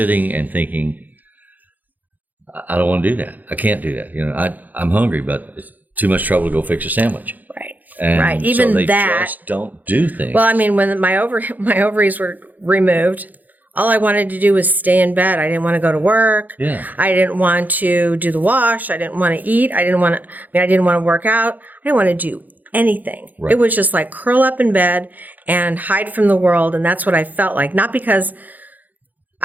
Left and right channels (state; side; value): late; left; 0.082 ms